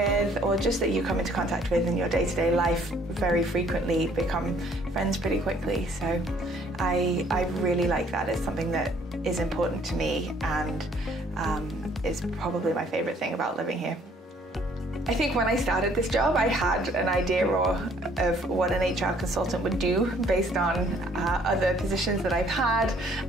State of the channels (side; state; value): both; normal; correlation 0.61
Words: or just that you come into contact with in your day-to-day life very frequently, become friends pretty quickly. So I really like that. It's something that is important to me, and is probably my favourite thing about living here. I think when I started this job, I had an idea of what an HR consultant would do based on other positions that I've had